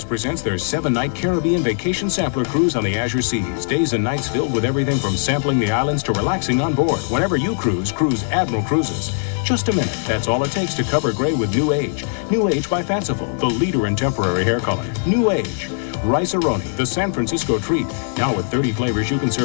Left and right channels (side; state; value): right; silent; digital silence